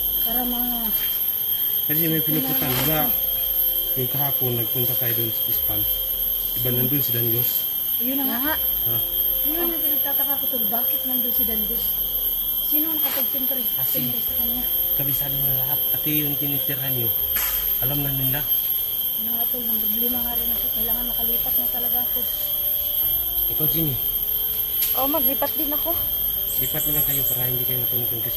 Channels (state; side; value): identical; both; correlation 1.00